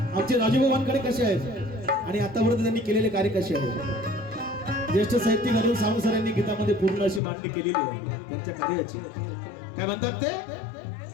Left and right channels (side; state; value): right; drops out; at 7.2 s